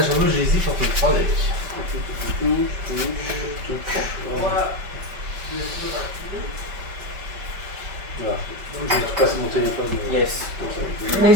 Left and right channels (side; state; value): left; late; 5.2 ms